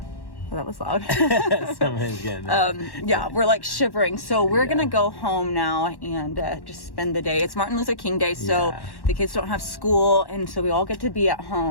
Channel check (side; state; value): right; late; 1.1 ms